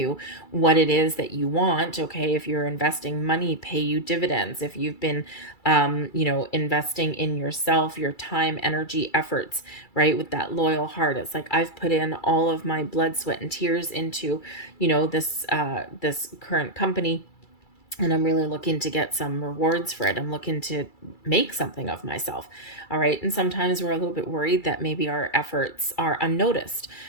what it is that you want. Okay, if you're investing money, pay you dividends. If you've been investing in yourself, your time, energy, efforts, right? With that loyal heart. It's like, I've put in all of my blood, sweat, and tears into, this current company. and I'm really looking to get some rewards for it. I'm looking to make something of myself. All right. And sometimes we're a little bit worried that maybe our efforts are unnoticed.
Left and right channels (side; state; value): right; late; 2.3 ms